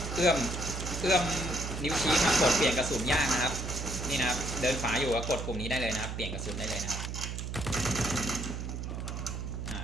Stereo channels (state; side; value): noise; right; hum, 5 dB below the sound